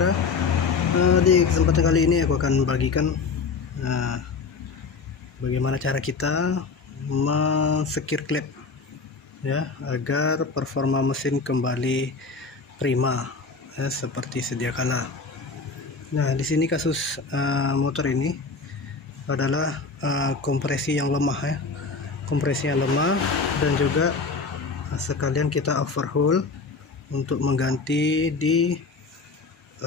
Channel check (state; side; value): quieter; right; 4.6 dB